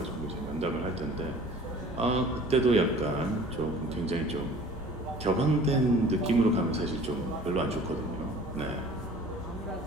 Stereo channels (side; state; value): both; normal; correlation 0.47